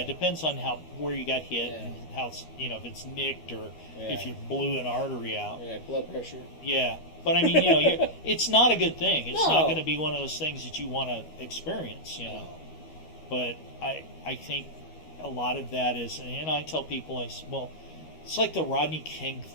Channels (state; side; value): late; right; 13 ms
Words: it depends on where you got hit and how if it's nicked or if you blew an artery out. Yeah, blood pressure. Yeah, but I mean, it's not a good thing. It's not going to be one of those things that you want to experience, No. But I think a lot of that is, and I tell people, it's like the Rodney King